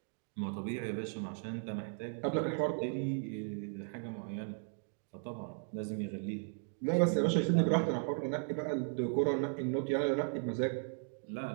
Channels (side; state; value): left; silent; 54 dB below the other